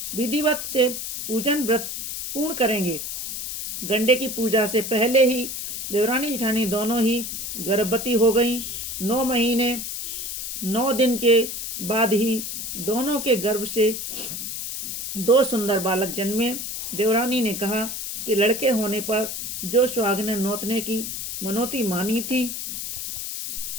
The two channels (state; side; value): noise; left; hiss, 5 dB below the sound